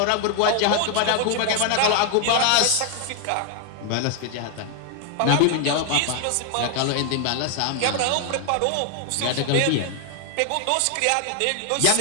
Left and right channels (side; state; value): both; different; correlation 0.00